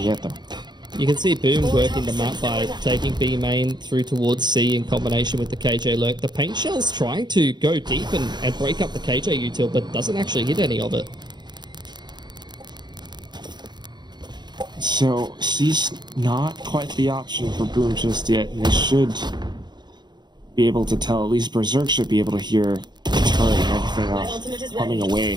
yet though. You can see Boom working the map by taking B main through towards C in combination with the KJ lurk. The paint shell's trying to go deep and break up the KJ util, but doesn't actually hit any of it. So C's not quite the option for Boom just yet, and they should be able to tell. At least Berserk should be able to hear the turret and everything else coming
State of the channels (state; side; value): late; left; 0.21 ms